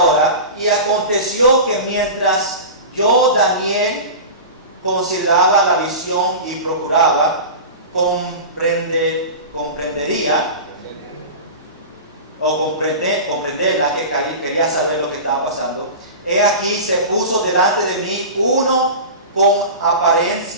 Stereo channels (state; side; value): inverted; both; correlation -0.30